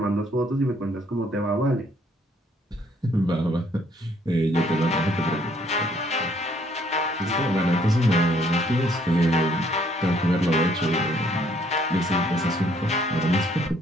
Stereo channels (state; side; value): normal; both; correlation 0.65